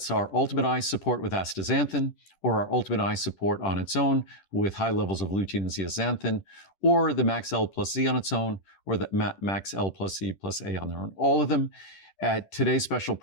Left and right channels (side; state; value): right; late; 10 ms